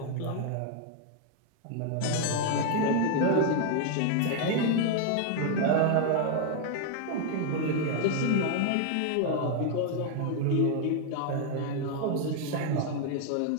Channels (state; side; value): different; both; correlation 0.00